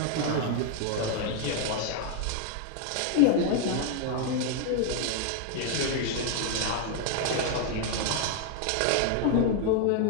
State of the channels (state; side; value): different; both; correlation 0.00